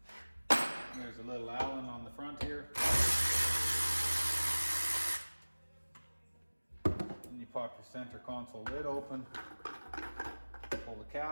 There's a little Allen on the front here. And you pop your center console lid open, pull the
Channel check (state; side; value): inverted; both; correlation -1.00